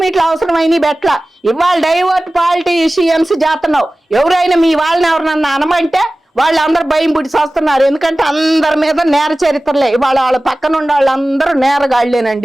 మీట్లు అవసరమైనవి పెట్టలా. ఇవాళ డైవర్ట్ పాలిటీషియన్స్ చేస్తున్నావు. ఎవరైనా మీ వాళ్ళని ఎవరినన్నా అనమంటే వాళ్ళందరూ భయం పుట్టి వస్తున్నారు. ఎందుకంటే అందరి మీద నేర చరిత్రలే. వాళ్ళ పక్కన ఉండే వాళ్ళందరూ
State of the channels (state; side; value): normal; both; correlation 0.97